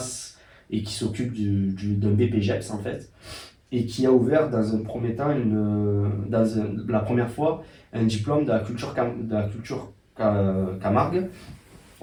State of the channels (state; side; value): identical; both; correlation 1.00